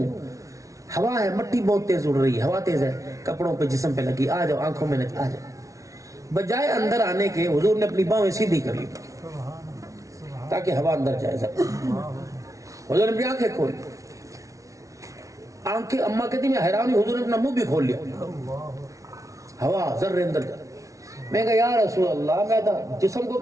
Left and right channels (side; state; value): left; late; 0.16 ms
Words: ہوا ہے، مٹی بہت تیز اڑ رہی ہے، ہوا تیز ہے، کپڑوں پہ جسم پہ لگی، آ جاؤ، آنکھوں میں آ جاؤ۔ بجائے اندر آنے کے حضور نے اپنی باہیں سیدھی کر لی تاکہ ہوا اندر جائے۔ حضور نے اپنی آنکھیں کھولی، آنکھیں اماں کہتی میں حیران ہوئی، حضور نے اپنا منہ بھی کھول لیا، ہوا ذرے اندر جائے۔ میں کہا یا رسول اللہ، میں تھا جسم کو